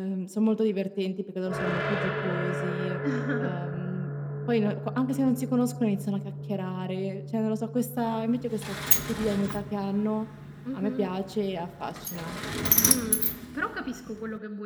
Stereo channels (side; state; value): both; identical; correlation 1.00